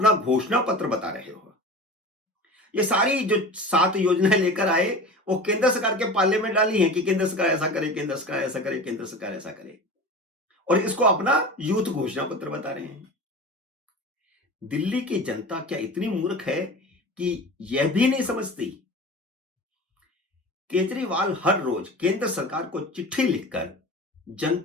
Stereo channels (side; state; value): both; normal; correlation 0.34